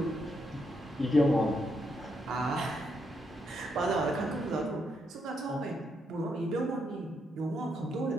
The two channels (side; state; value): both; normal; correlation 0.78